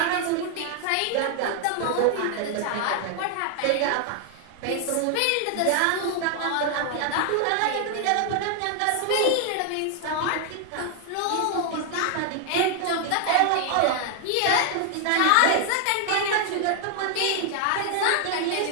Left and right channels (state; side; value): different; both; correlation 0.00